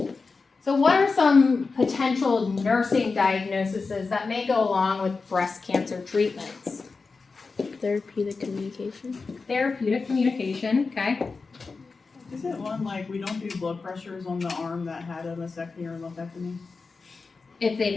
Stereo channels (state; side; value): quieter; right; 4.3 dB